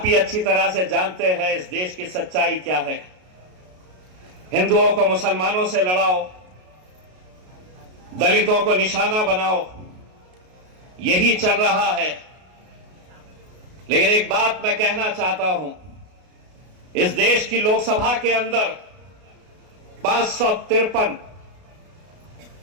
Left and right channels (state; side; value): late; left; 33 ms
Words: अच्छी तरह से जानते हैं इस देश की सच्चाई क्या है। हिंदुओं को मुसलमानों से लड़ाओ, दलितों को निशाना बनाओ, यही चल रहा है। लेकिन एक बात मैं कहना चाहता हूं, इस देश की लोकसभा के अंदर 553